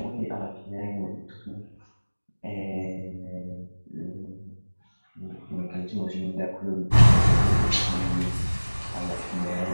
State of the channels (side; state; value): both; inverted; correlation -1.00